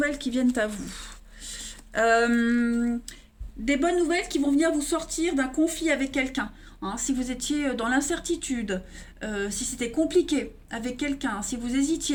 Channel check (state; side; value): identical; both; correlation 1.00